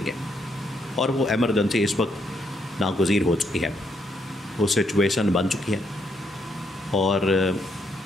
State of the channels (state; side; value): normal; both; correlation 0.75